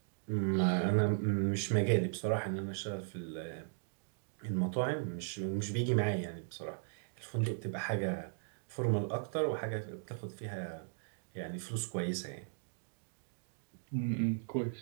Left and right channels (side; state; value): left; silent; digital silence